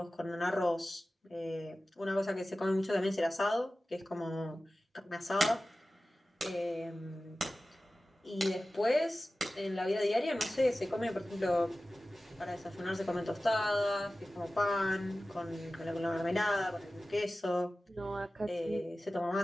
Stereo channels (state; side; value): normal; both; correlation 0.96